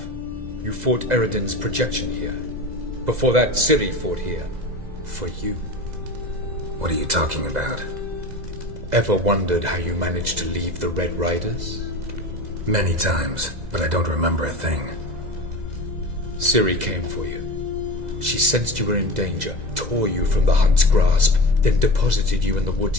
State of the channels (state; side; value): late; left; 2.0 ms